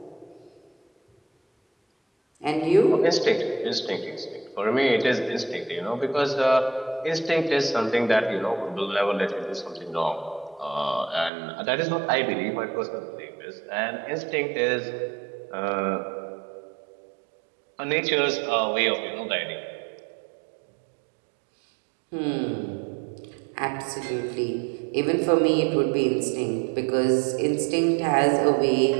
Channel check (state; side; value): drops out; left; at 11.3 s